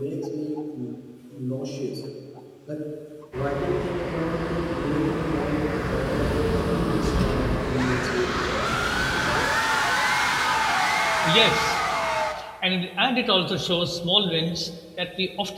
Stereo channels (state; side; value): identical; both; correlation 1.00